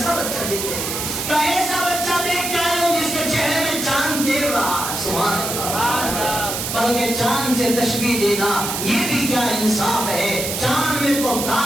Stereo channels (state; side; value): noise; right; hiss, 3 dB below the sound